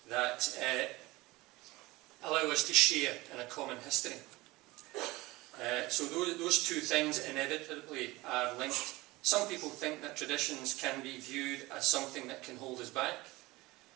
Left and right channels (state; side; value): quieter; left; 20.7 dB